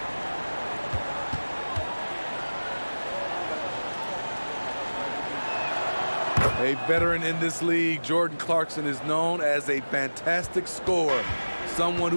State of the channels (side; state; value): both; inverted; correlation -1.00